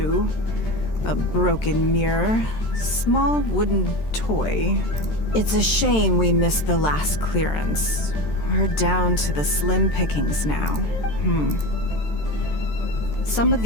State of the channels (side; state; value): right; late; 13 ms